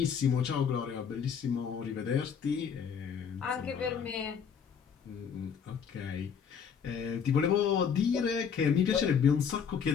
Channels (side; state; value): right; quieter; 7.1 dB